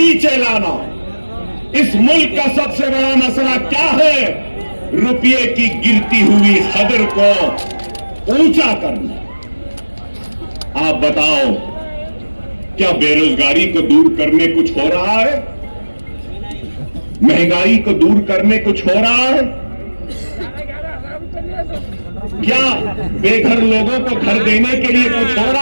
लाना। इस मुल्क का सबसे बड़ा मसला क्या है? रुपये की गिरती हुई कदर को ऊंचा करना। आप बताओ, क्या बेरोजगारी को दूर करने कुछ हो रहा है? महंगाई को दूर करने कुछ हो रहा है? क्या बेघर लोगों को घर देने के लिए कुछ हो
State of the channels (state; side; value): inverted; both; correlation -1.00